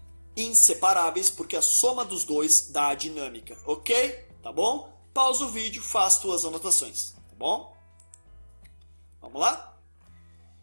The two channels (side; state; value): both; inverted; correlation -1.00